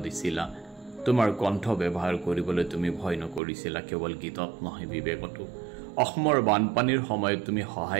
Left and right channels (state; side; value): drops out; left; at 3.4 s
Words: দিছিলা তোমাৰ কণ্ঠ ব্যৱহাৰ কৰিবলৈ তুমি ভয় নকৰিছিলা কেৱল গীতত নহয় বিবেকতো অসমৰ বানপানীৰ সময়ত তুমি